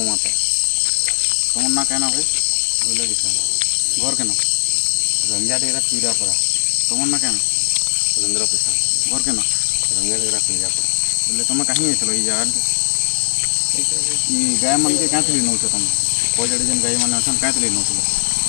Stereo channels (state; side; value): silent; right; digital silence